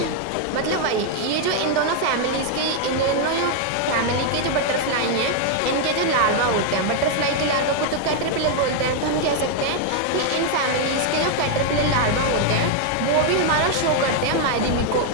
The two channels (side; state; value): both; different; correlation 0.00